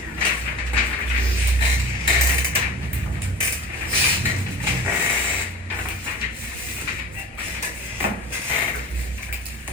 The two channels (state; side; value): normal; both; correlation 0.37